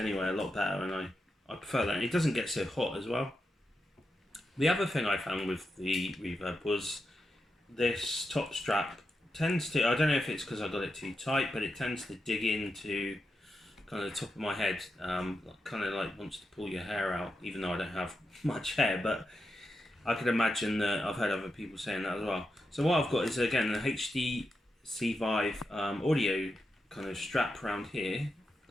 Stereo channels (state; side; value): normal; both; correlation 0.87